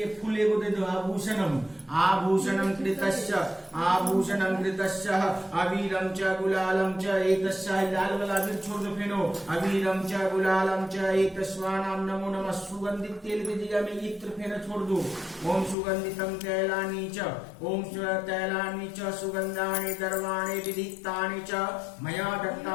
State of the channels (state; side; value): drops out; right; at 15.8 s